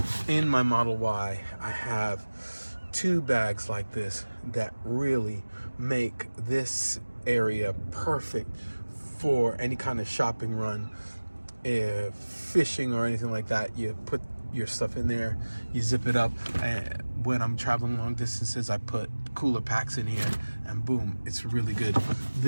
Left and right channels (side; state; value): both; inverted; correlation -1.00